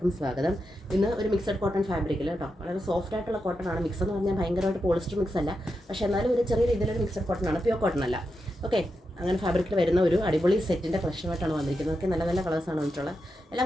സ്വാഗതം. ഇന്ന് ഒരു മിക്സഡ് കോട്ടൺ ഫാബ്രിക്കിൽ കേട്ടോ, വളരെ സോഫ്റ്റ് ആയിട്ടുള്ള കോട്ടൺ ആണ്. മിക്സ് എന്ന് പറഞ്ഞാൽ ഭയങ്കരമായിട്ട് പോളിസ്റ്റർ മിക്സ് അല്ല, പക്ഷേ എന്നാലും ഒരു ചെറിയ രീതിയിലൊരു മിക്സഡ് കോട്ടൺ ആണ്, പ്യൂർ കോട്ടൺ അല്ല. ഓക്കെ, അങ്ങനെ ഫാബ്രിക്കിൽ വരുന്ന ഒരു അടിപൊളി സെറ്റിൻ്റെ കളക്ഷനായിട്ടാണ് വന്നിരിക്കുന്നത്. ഒക്കെ നല്ല നല്ല കളേഴ്സാണ് വന്നിട്ടുള്ളത്.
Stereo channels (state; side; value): normal; both; correlation 0.87